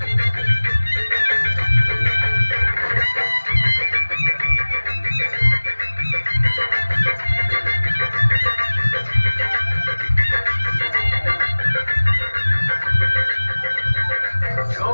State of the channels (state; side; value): inverted; both; correlation -1.00